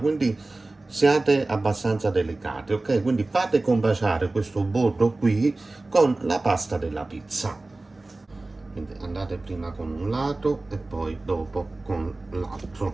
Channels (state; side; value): quieter; left; 3.1 dB